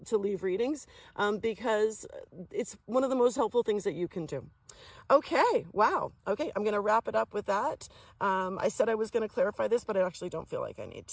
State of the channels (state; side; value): identical; both; correlation 1.00